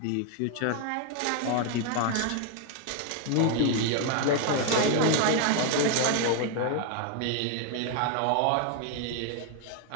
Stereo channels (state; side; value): different; both; correlation 0.00